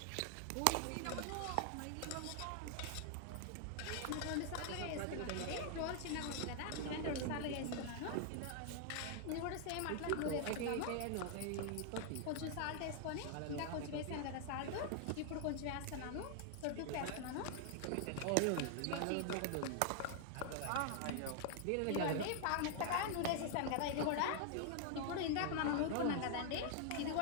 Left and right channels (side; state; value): both; different; correlation 0.00